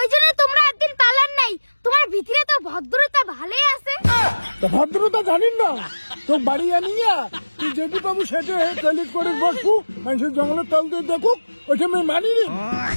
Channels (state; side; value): inverted; both; correlation -1.00